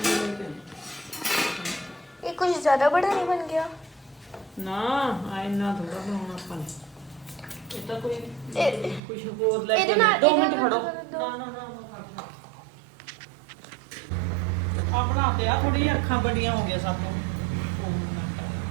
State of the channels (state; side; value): drops out; left; at 9.0 s